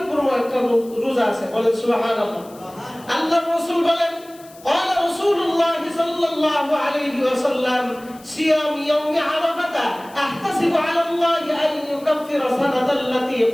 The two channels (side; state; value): left; noise; hiss, 24 dB below the sound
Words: একটা রোজা আছে, বলেন সুবহানাল্লাহ। আল্লাহর রাসূল বলেন قال رسول الله صلى الله عليه وسلم صيام يوم عرفة احتسب على الله ان يكفر سنة التي